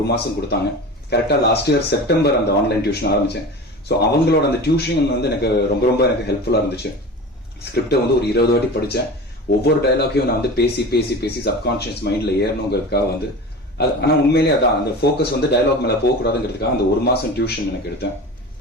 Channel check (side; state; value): both; normal; correlation 0.33